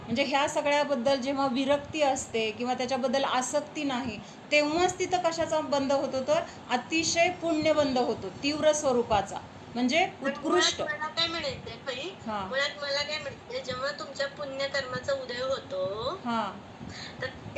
ह्या सगळ्याबद्दल जेव्हा विरक्ती असते किंवा त्याच्याबद्दल आसक्ती नाही, तेव्हाच तिथं कशाचा बंद होतो तर अतिशय पुण्य बंद होतो, तीव्र स्वरूपाचा, म्हणजे उत्कृष्ट. मला काय म्हणायचंय, जेव्हा तुमच्या पुण्यकर्माचा उदय होतो तर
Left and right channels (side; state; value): both; identical; correlation 1.00